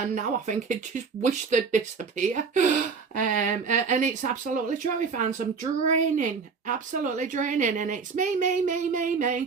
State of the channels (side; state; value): left; quieter; 5.3 dB